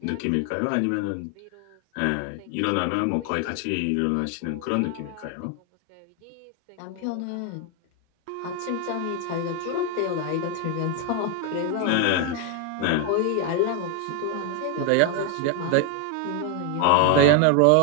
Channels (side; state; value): both; different; correlation 0.01